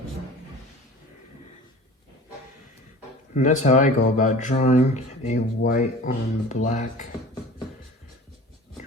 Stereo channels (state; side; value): normal; both; correlation 0.41